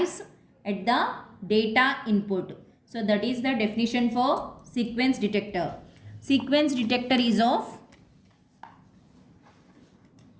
at the data input. So that is the definition for sequence detector. Sequence detector is of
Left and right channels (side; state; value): both; identical; correlation 1.00